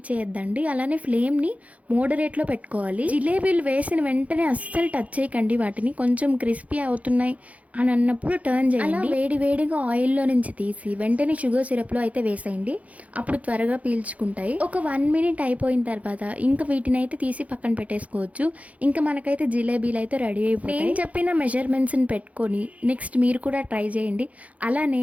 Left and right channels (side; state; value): left; late; 0.068 ms